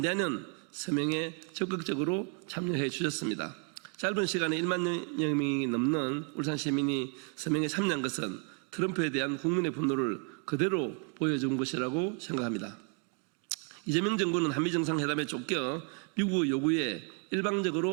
서명에 적극적으로 참여해 주셨습니다. 짧은 시간에 1만 명이 넘는 울산 시민이 서명에 참여한 것은 트럼프에 대한 국민의 분노를 그대로 보여준 것이라고 생각합니다. 이재명 정부는 한미 정상회담에 쫓겨 미국의 요구에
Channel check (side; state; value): left; quieter; 37.4 dB